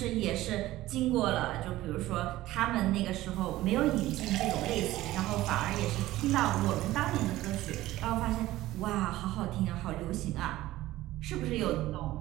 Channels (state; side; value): quieter; left; 16.2 dB